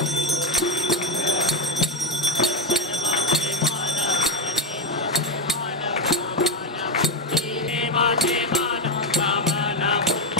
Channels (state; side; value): normal; both; correlation 0.11